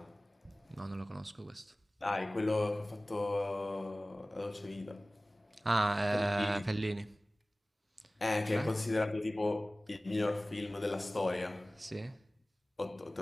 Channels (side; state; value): both; normal; correlation 0.98